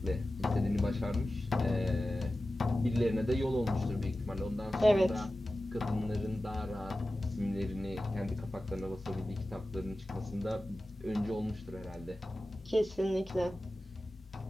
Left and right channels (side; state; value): both; normal; correlation 0.95